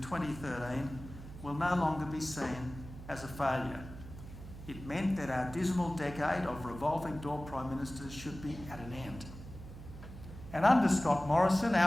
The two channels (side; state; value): right; noise; hum, 13 dB below the sound